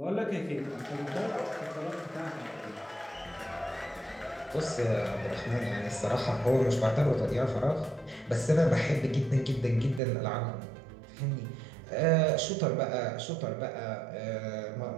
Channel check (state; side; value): drops out; left; at 10.0 s